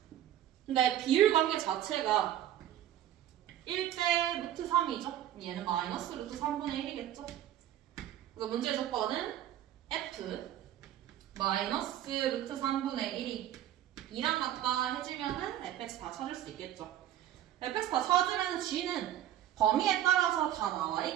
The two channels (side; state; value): left; quieter; 12.0 dB